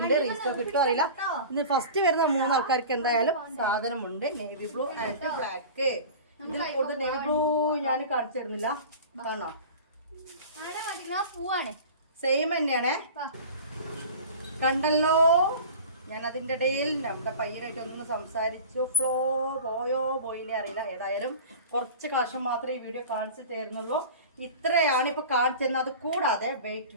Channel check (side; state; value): both; inverted; correlation -0.37